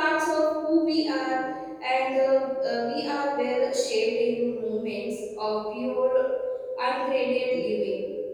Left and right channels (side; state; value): both; identical; correlation 1.00